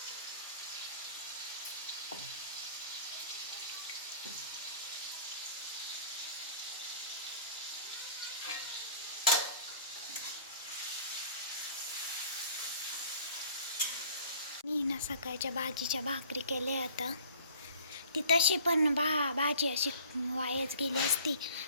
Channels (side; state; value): both; inverted; correlation -0.49